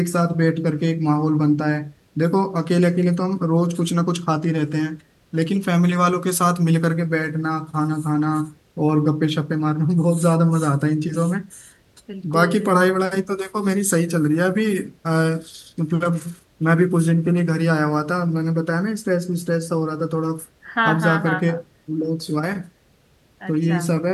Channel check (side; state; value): both; identical; correlation 1.00